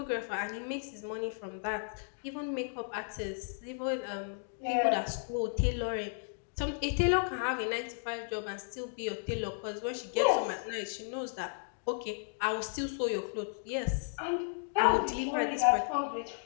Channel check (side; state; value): right; silent; digital silence